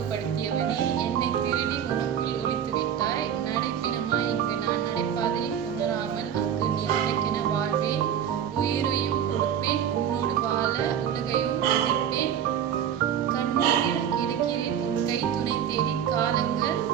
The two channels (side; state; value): left; quieter; 9.2 dB